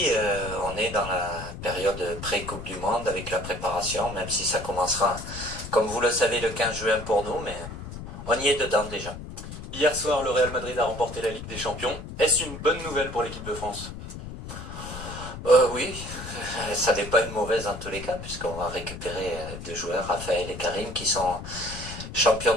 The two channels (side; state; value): left; noise; rumble, 10 dB below the sound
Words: on est dans la période pré-Coupe du Monde avec la préparation, même si ça commencera, comme vous le savez, le 15 juin pour nous, mais on y est dedans déjà. Hier soir, le Real Madrid a remporté la Ligue des Champions. Est-ce une bonne nouvelle pour l'équipe de France? Oui, ça n'est pas une mauvaise en tous les cas, puisqu'on va récupérer deux joueurs, Raphaël et Karim, qui sont champions